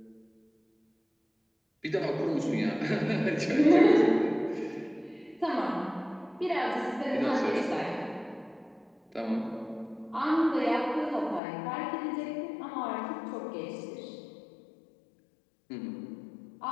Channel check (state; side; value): drops out; right; at 11.4 s